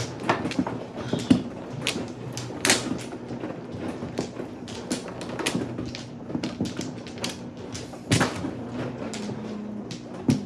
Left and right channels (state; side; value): identical; both; correlation 1.00